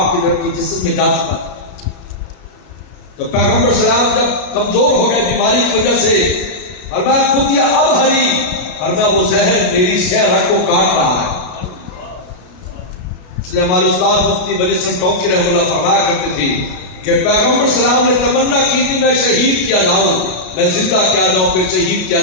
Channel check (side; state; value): right; late; 33 ms